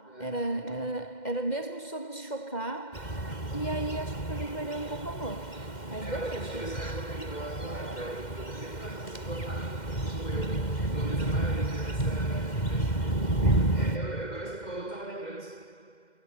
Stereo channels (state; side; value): late; right; 2.1 ms